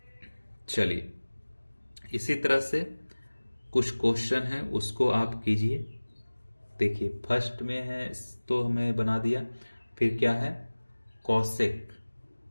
चलिए इसी तरह से कुछ क्वेश्चन है उसको आप कीजिए। देखिए फर्स्ट में है तो हमें बना दिया, फिर क्या है, cosec,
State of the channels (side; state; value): both; inverted; correlation -1.00